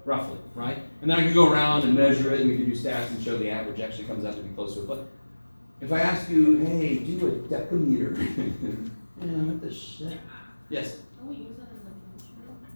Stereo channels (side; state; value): both; inverted; correlation -1.00